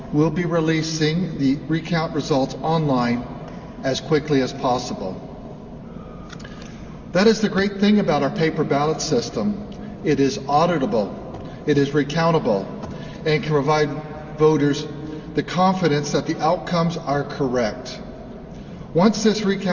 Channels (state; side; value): identical; both; correlation 1.00